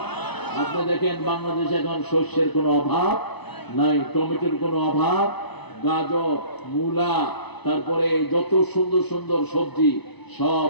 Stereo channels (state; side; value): late; right; 0.99 ms